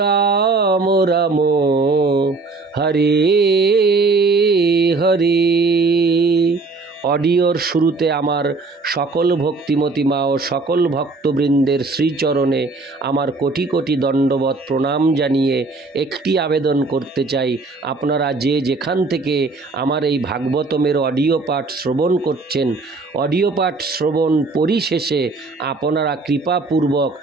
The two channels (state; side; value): quieter; left; 3.7 dB